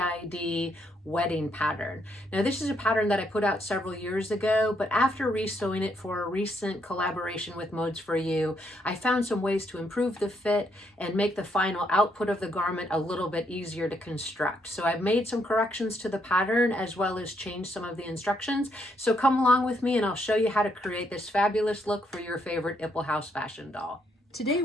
wedding pattern. Now this is a pattern that I put out several years ago, but after resewing it for a recent collaboration with Modes for You, I found some ways to improve the fit and make the final output of the garment a little bit easier to construct. So I've made some corrections to the pattern as well as changed some of the instructions. So come along with me and I'll show you how to create this fabulous look for your favorite Ipple House fashion doll. Today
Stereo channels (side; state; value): both; normal; correlation 0.74